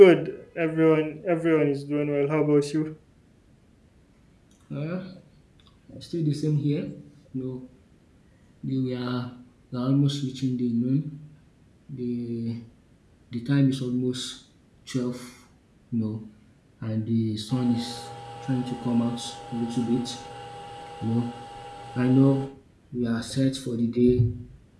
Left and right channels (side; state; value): both; identical; correlation 1.00